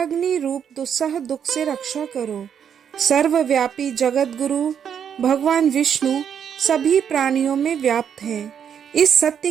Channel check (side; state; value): left; quieter; 8.2 dB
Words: रूप दुस्सह दुख से रक्षा करो। सर्वव्यापी जगत गुरु भगवान विष्णु सभी प्राणियों में व्याप्त हैं। इस सत्य